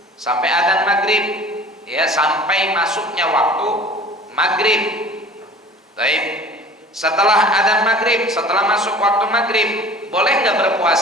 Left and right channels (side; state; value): both; normal; correlation 0.44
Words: sampai adzan maghrib, ya, sampai masuknya waktu maghrib. Baik. Setelah adzan maghrib, setelah masuk waktu maghrib, boleh nggak